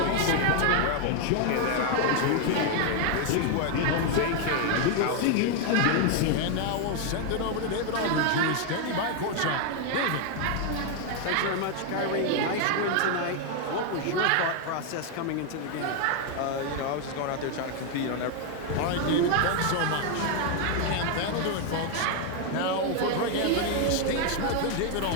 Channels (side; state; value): both; different; correlation 0.01